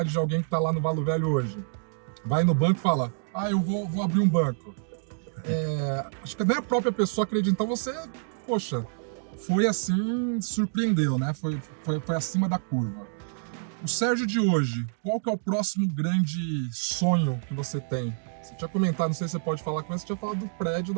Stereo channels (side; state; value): left; silent; digital silence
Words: de alguém que está lá no Valo Velho hoje, vai no banco e fala, eu vou abrir um banco. Acho que nem a própria pessoa acredita, então você, poxa, foi assim, surpreendeu, né? Foi acima da curva. O Sérgio de hoje, qual que é o próximo grande sonho que você tem? Você tinha comentado, não sei se você pode falar com você tinha falado do prédio